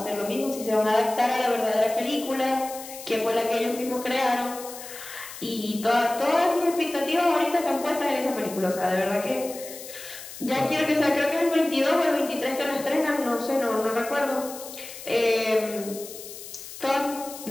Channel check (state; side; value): noise; left; hiss, 13 dB below the sound